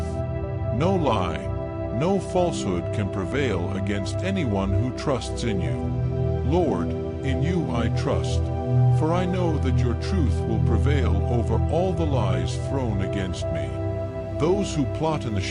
No lie, no falsehood can prevail against anyone who trusts in you. Lord, in you I trust, for I know that your truth will prevail over all the lies thrown against me. Those who plot in the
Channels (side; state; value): both; identical; correlation 1.00